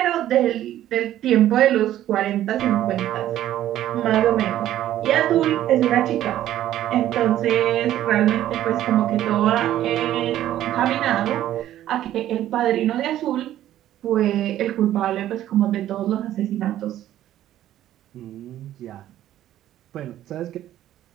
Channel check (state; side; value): quieter; left; 12.7 dB